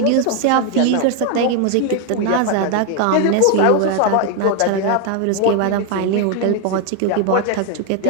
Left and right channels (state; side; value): different; both; correlation 0.01